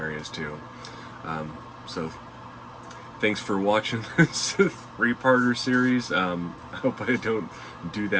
too. So thanks for watching this three-parter series. I hope I don't do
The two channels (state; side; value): identical; both; correlation 1.00